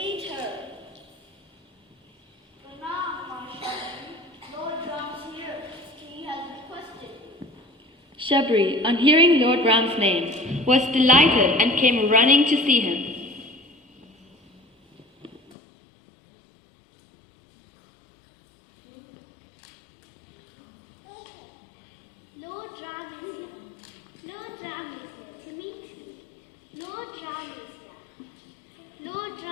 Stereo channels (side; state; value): right; drops out; at 15.6 s